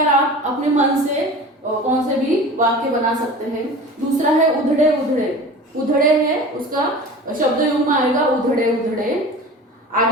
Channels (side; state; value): both; normal; correlation 0.37